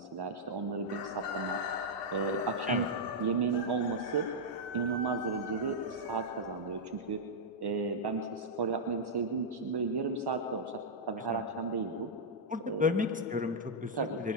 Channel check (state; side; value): normal; both; correlation -0.06